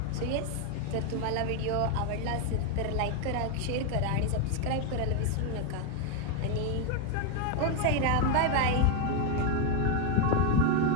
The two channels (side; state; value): both; different; correlation 0.01